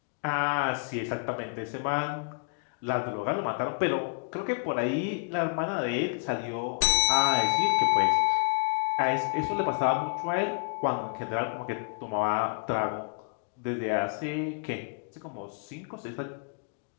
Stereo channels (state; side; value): quieter; right; 38.8 dB